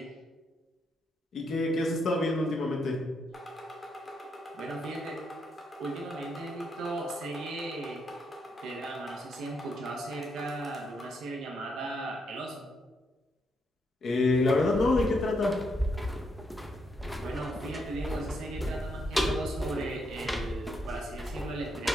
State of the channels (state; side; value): normal; both; correlation 0.78